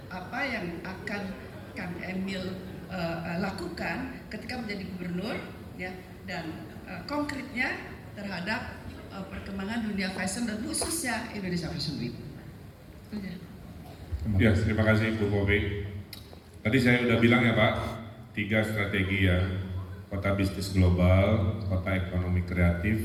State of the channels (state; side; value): identical; both; correlation 1.00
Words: apa yang akan Kang Emil lakukan ketika menjadi gubernur, ya, dan konkretnya terhadap perkembangan dunia fashion dan khususnya Indonesia Fashion Week. Itu aja. Ya, terima kasih Bu Bobi. Tadi saya udah bilang ya Pak, 3 strategi ya, kota bisnis global, kota ekonomi